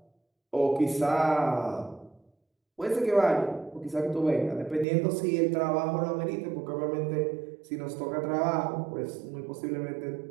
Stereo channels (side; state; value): left; drops out; at 4.9 s